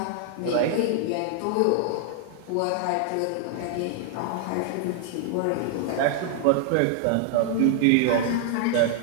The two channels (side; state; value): both; different; correlation 0.00